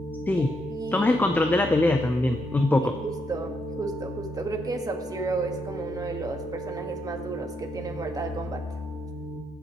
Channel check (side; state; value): both; normal; correlation 0.78